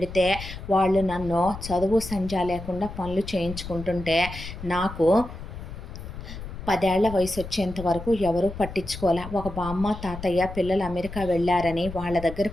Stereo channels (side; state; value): left; noise; rumble, 11 dB below the sound